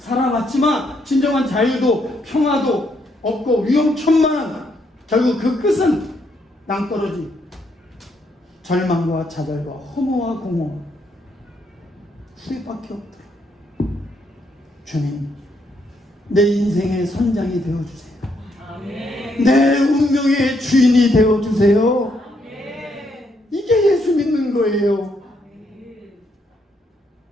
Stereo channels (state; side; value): normal; both; correlation 0.75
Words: 진정한 자유도 평화도 없고 위험천만한 결국 그 끝은 낭떠러지, 절망과 좌절과 허무와 공허, 후회밖에 없더라. 주님, 내 인생의 선장이 되어주세요. 내 운명의 주인이 되어주세요. 이게 예수 믿는 거예요.